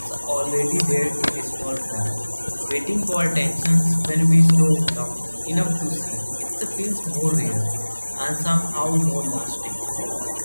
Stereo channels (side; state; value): both; inverted; correlation -1.00